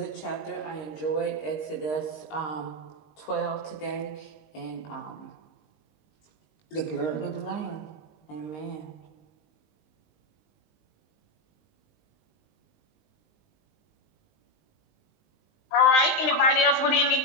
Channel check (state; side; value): late; right; 19 ms